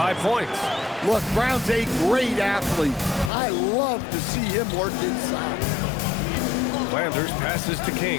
points. Look, Brown's a great athlete. I love to see him work inside. Flanders passes to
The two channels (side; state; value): right; drops out; at 3.3 s